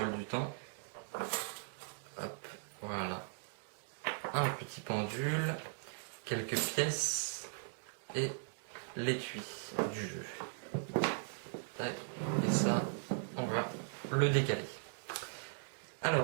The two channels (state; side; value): silent; left; digital silence